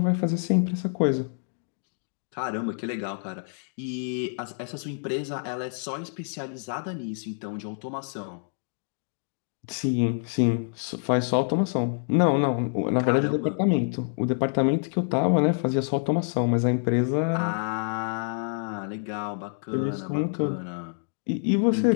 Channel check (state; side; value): silent; right; digital silence